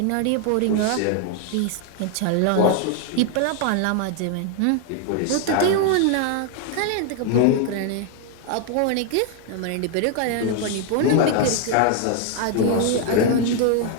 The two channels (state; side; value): different; both; correlation 0.00